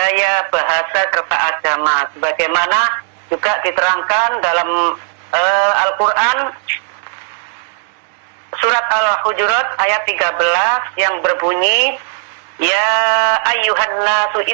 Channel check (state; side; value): silent; left; 59 dB below the other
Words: bahasa, serta agama. Sebagaimana juga diterangkan dalam Al-Quran surat Al-Hujurat ayat 13 yang berbunyi, ya ayyuhan nasu